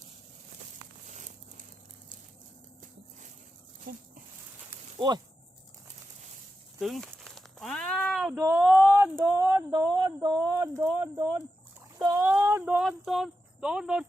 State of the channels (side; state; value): both; normal; correlation 0.90